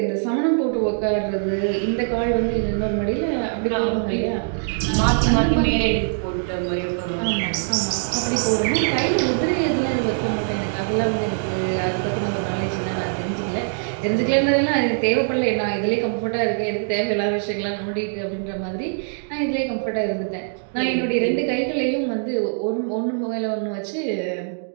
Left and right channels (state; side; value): silent; left; digital silence